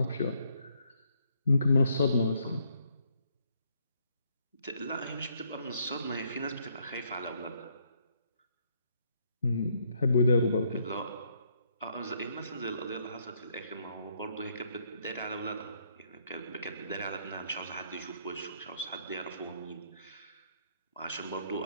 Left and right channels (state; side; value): inverted; both; correlation -0.71